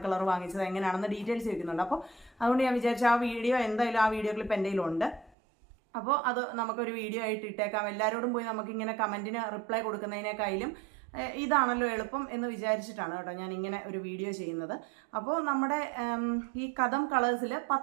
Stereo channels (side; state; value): left; drops out; at 5.3 s